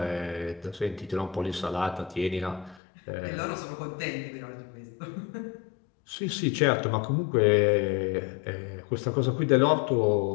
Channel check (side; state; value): right; drops out; at 2.8 s